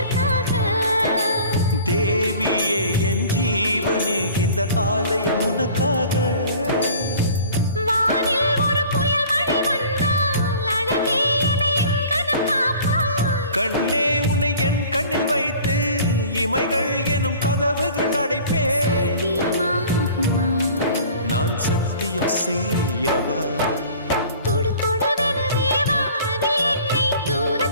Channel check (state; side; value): inverted; both; correlation -0.46